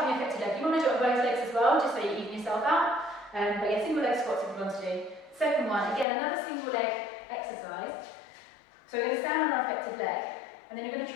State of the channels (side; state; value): right; drops out; at 6.1 s